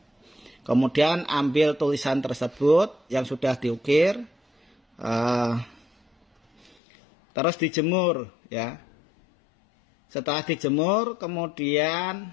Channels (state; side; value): drops out; right; at 6.8 s